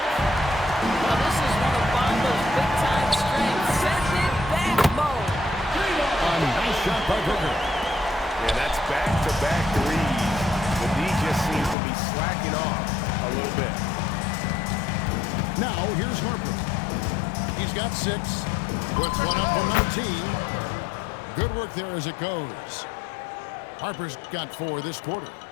Now, this is one of Bamba's big-time strengths. Send it back, Mo. A nice shot by Booker. Yeah, that's back-to-back threes. The D just seems to be slacking off a little bit. Now here's Harper. He's got 6. Puts one up from 19. Good work there as it goes. Harper's got 4 this quarter.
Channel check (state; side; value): drops out; right; at 11.8 s